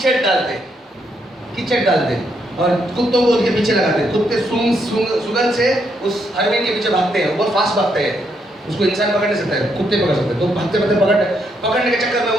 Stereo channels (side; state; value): both; normal; correlation 0.76